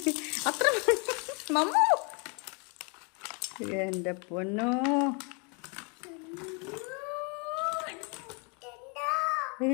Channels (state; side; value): quieter; right; 34.1 dB